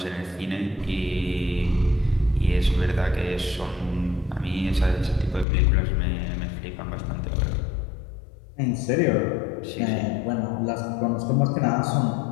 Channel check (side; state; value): right; drops out; at 5.5 s